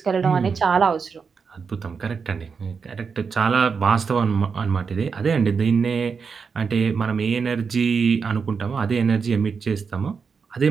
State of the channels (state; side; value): quieter; left; 5.6 dB